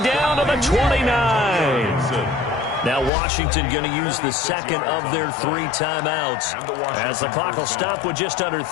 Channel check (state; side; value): drops out; right; at 3.1 s